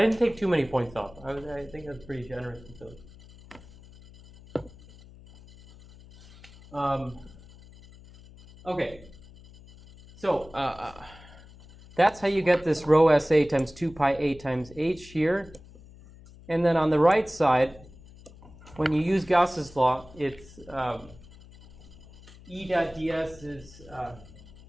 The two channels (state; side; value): noise; left; hum, 21 dB below the sound